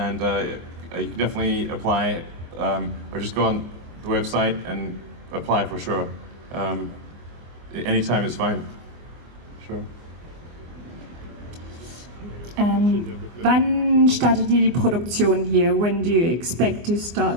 You can definitely apply, or just go on the website and apply for sure. Anytime is fine. Sure. Wann startet ihr die Produktion hier? When do you expect to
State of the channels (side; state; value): left; late; 24 ms